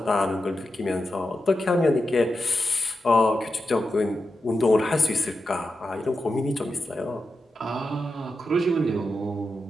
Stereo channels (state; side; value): normal; both; correlation 0.89